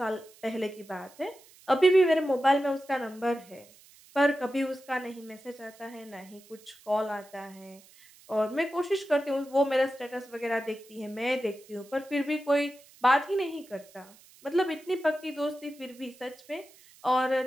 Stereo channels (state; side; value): noise; right; hiss, 25 dB below the sound